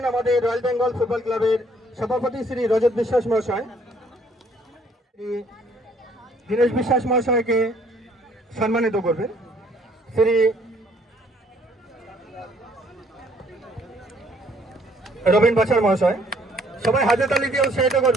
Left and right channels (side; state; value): both; normal; correlation 0.63